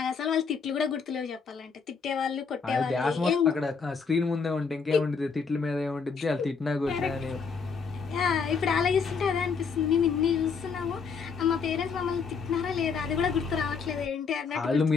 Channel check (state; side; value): quieter; right; 5.4 dB